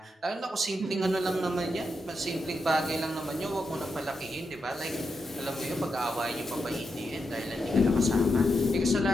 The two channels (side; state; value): both; normal; correlation 0.85